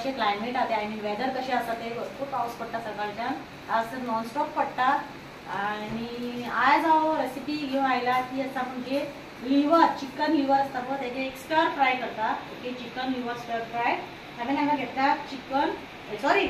क्लायमेट आहा ते, आय मीन वेदर कशें आसा ते. भरपूर पावस पडटा सकाळच्यान, आज तर नॉनस्टॉप पडटा. आणि आज हांव रेसिपी घेवन आयला ती आसा म्हणजे लिव्हर, चिकन लिव्हर आसता पळय तेजे एक स्टर फ्राय करता. ओके, चिकन लिव्हर स्टर फ्राय. हांवें हांगा घेतला चिकन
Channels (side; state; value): both; identical; correlation 1.00